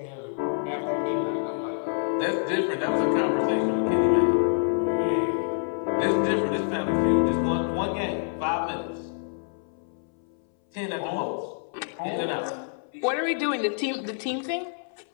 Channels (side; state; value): right; silent; 60 dB below the other